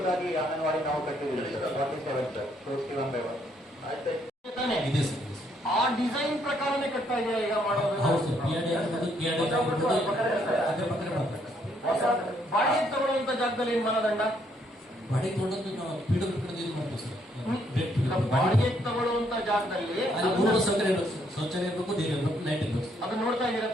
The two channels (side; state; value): both; normal; correlation 0.70